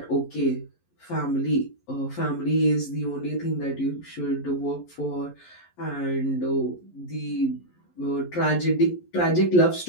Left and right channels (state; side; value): late; right; 11 ms